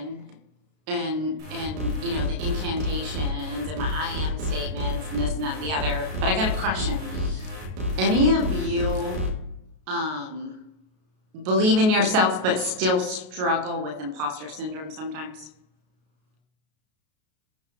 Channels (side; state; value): left; late; 33 ms